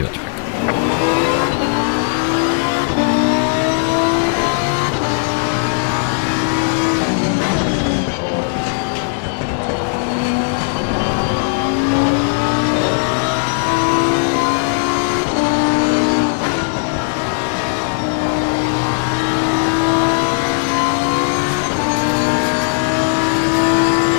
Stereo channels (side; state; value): right; silent; 68 dB below the other